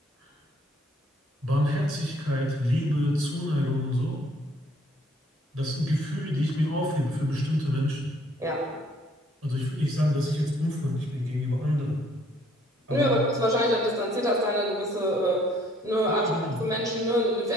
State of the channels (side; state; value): both; normal; correlation 0.62